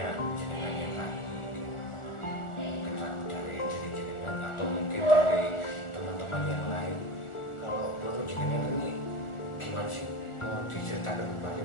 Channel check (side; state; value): right; late; 1.4 ms